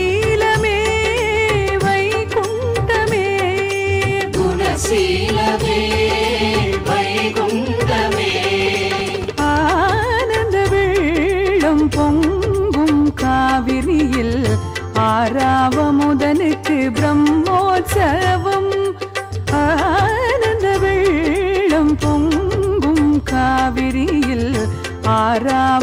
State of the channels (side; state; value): both; identical; correlation 1.00